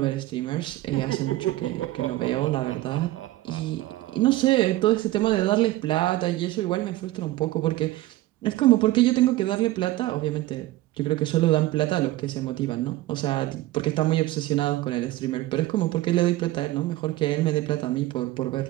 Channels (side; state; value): left; quieter; 16.7 dB